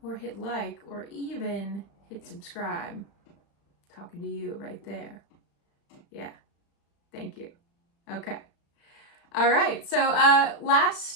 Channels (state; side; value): late; right; 35 ms